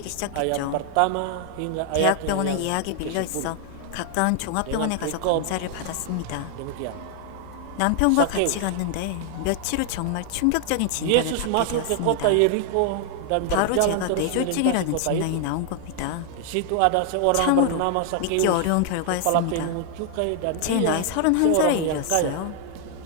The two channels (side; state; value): both; different; correlation 0.00